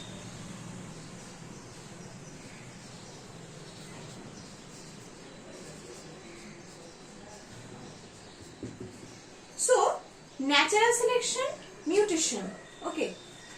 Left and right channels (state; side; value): identical; both; correlation 1.00